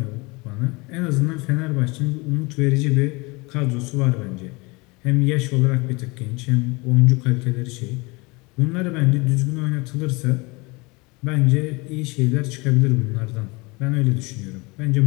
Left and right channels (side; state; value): right; quieter; 26.0 dB